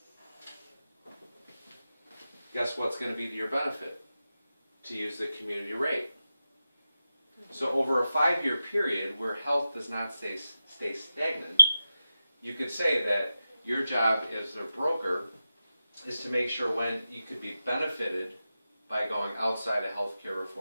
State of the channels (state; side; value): inverted; both; correlation -0.93